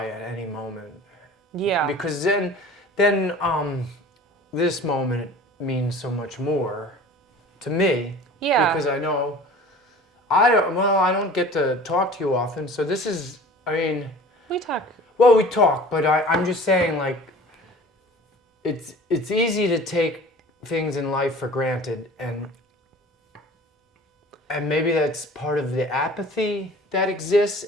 at any moment. Yeah. Because then this moment means so much more to me. Yeah. Because I know I don't get to talk to you often, so this is, I mean, we talk. Well, we talk, but I'm just saying, like, it's easy to take things in life for granted, and maybe that's part of the apathy that exists,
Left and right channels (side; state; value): both; normal; correlation 0.43